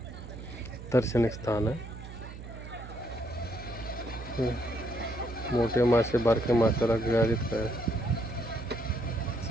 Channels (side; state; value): right; noise; hum, 12 dB below the sound